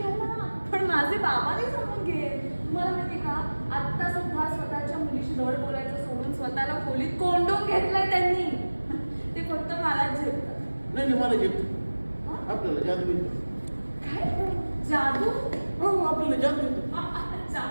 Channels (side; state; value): both; inverted; correlation -1.00